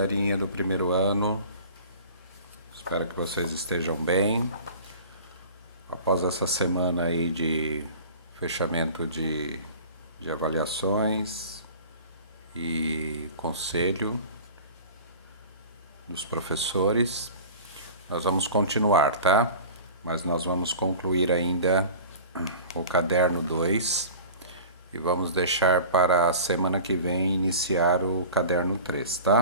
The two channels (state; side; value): inverted; both; correlation -0.40